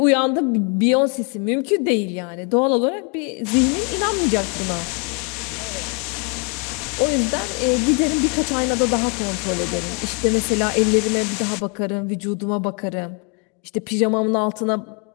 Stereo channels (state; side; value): quieter; right; 36.4 dB